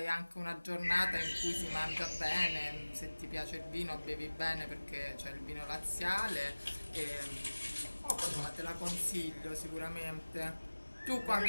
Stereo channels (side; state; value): both; inverted; correlation -1.00